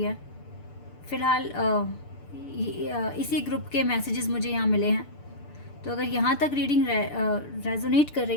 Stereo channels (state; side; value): late; right; 6.8 ms